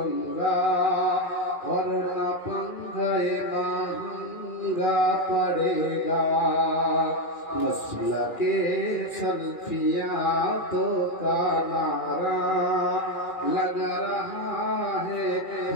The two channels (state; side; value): late; right; 2.4 ms